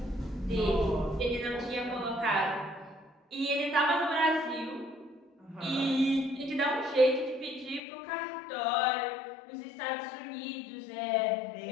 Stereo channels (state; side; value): drops out; right; at 7.8 s